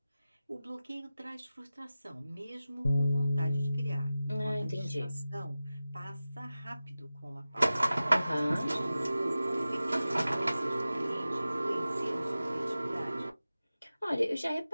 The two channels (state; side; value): inverted; both; correlation -0.95